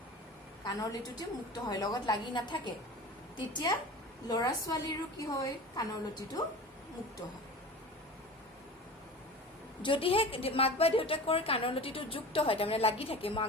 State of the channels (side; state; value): both; normal; correlation 0.35